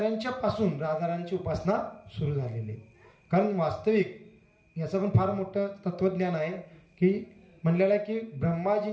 पासून राधाराणीची उपासना सुरू झालेली आहे. कारण वास्तविक याचं पण फार मोठं तत्वज्ञान आहे की म्हणलेलं आहे की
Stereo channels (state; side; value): identical; both; correlation 1.00